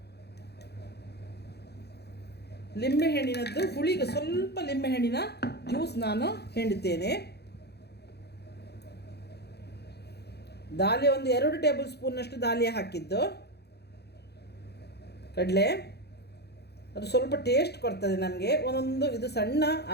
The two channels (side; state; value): right; late; 0.48 ms